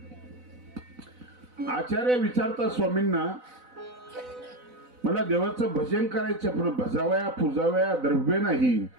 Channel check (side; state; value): left; late; 4.0 ms